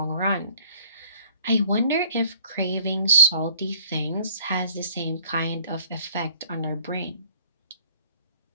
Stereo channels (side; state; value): both; inverted; correlation -0.56